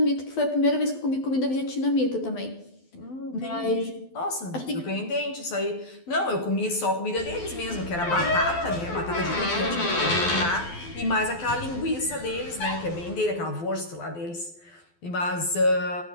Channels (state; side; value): late; right; 12 ms